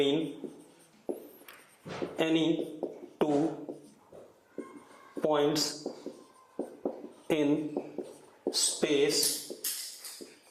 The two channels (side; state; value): both; identical; correlation 1.00